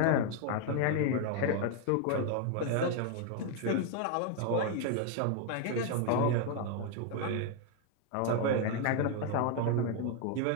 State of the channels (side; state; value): both; different; correlation 0.01